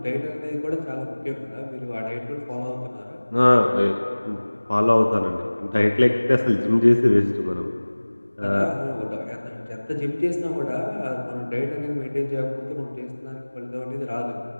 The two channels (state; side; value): inverted; both; correlation -1.00